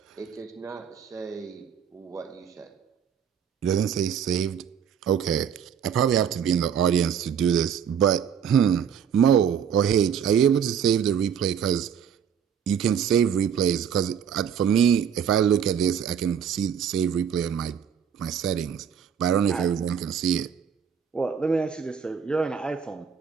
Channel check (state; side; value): quieter; left; 8.1 dB